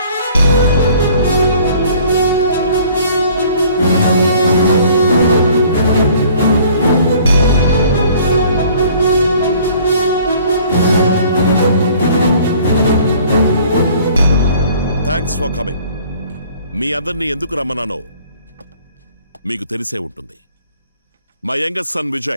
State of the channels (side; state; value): both; inverted; correlation -0.54